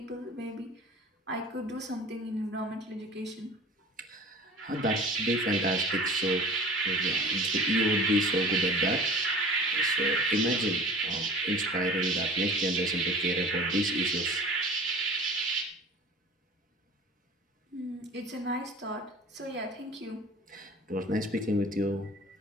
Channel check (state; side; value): normal; both; correlation 0.42